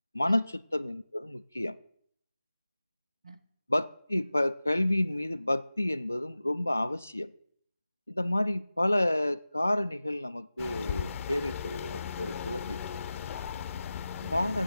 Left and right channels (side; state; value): both; inverted; correlation -0.95